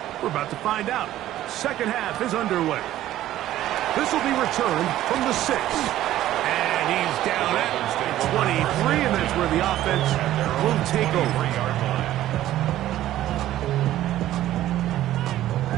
We're about to find out. Second half is underway. This will be returned from the 6. And he's down at 23, and that's where the offense will take over.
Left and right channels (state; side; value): quieter; left; 13.6 dB